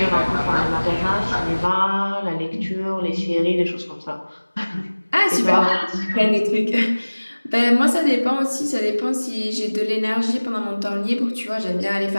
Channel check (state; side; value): inverted; both; correlation -1.00